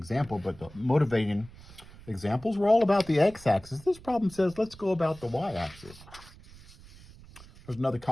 but the motivating examples were all about the x-axis. This problem says, let's go about the y-axis. There's another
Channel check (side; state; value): right; noise; rumble, 20 dB below the sound